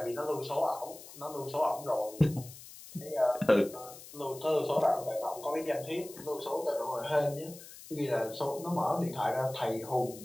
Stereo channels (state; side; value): noise; left; hiss, 16 dB below the sound